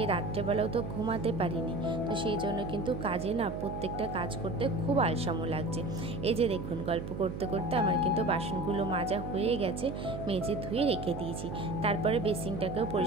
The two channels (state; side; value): noise; right; hum, 7 dB below the sound